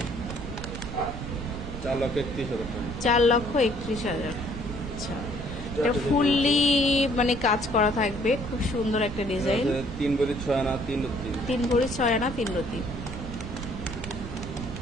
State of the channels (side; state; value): right; noise; rumble, 8 dB below the sound